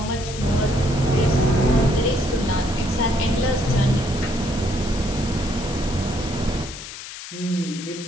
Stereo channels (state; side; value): noise; left; hiss, 12 dB below the sound